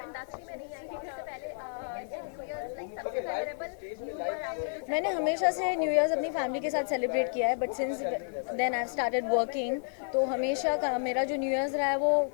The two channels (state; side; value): silent; right; digital silence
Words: इंडस्ट्री में नहीं आई थी इससे पहले ऐसे न्यू ईयर्स लाइक सबसे मेमोरेबल। मैंने हमेशा से न्यू ईयर्स अपनी फैमिली के साथ सेलिब्रेट किया है, but since then I started working, तो हमेशा मेरा जो न्यू ईयर्स रहा है